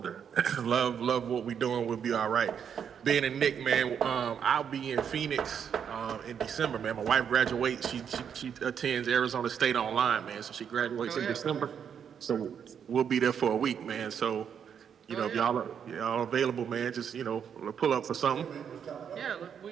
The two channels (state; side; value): quieter; left; 7.9 dB